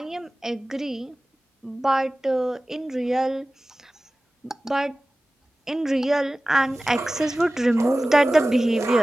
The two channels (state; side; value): normal; both; correlation 0.97